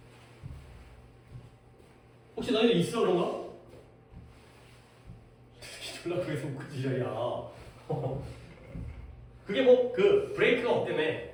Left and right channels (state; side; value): identical; both; correlation 1.00